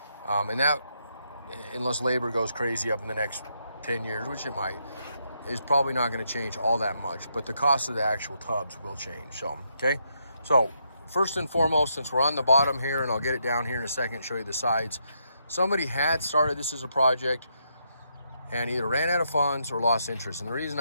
And that, unless labor goes crazy up in the next 10 years, which it might, is probably not going to change all that much, but the cost of the actual tubs will change. So, okay? So, first and foremost, since we're on the bottom here, and I'll get it down here in a second, show you the sides, somebody had started this as a project, and either ran out of funds or lost interest. And the reason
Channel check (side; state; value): both; inverted; correlation -0.78